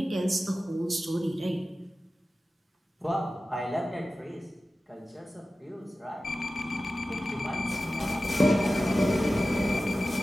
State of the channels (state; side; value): normal; both; correlation 0.95